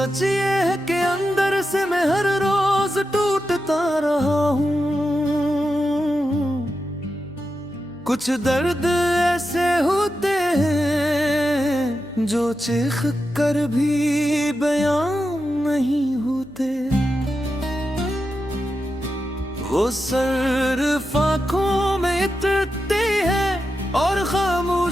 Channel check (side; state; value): right; noise; hum, 26 dB below the sound